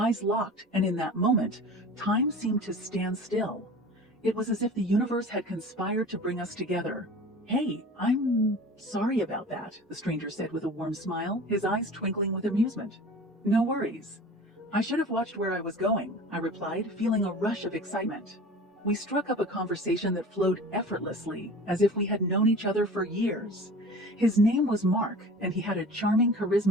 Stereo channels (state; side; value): normal; both; correlation 0.39